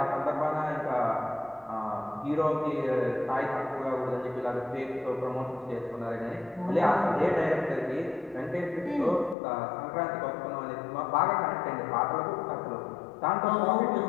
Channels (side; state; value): right; drops out; at 9.3 s